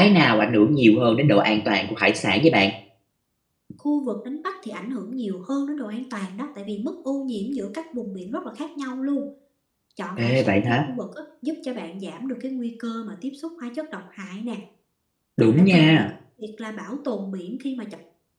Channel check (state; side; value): identical; both; correlation 1.00